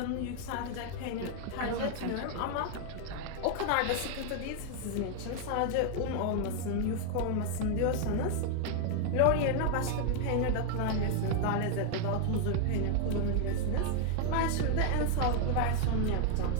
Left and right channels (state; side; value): different; both; correlation 0.00